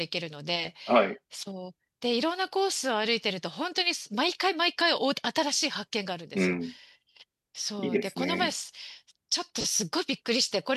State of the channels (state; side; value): identical; both; correlation 1.00